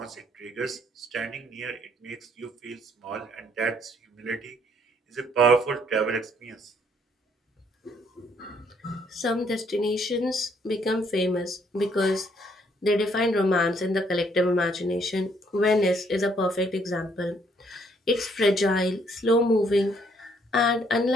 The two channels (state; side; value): normal; both; correlation 0.67